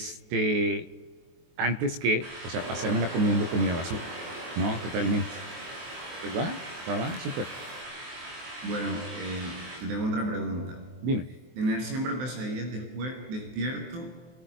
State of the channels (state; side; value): late; left; 23 ms